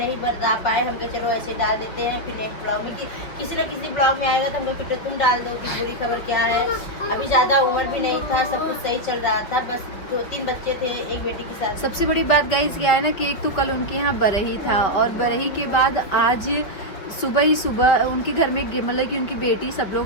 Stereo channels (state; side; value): late; right; 5.5 ms